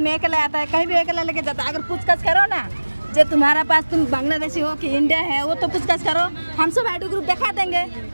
अकेला आता है, कहीं भी अकेला लेके जाता है। अगर पूछताछ करो ना, जो तुम्हारा पास तुम बांग्लादेशी हो कि इंडिया है, वो तो पूछताछ करो, हम सब आईडी ग्रुप दिखा देंगे।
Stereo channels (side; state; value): both; inverted; correlation -1.00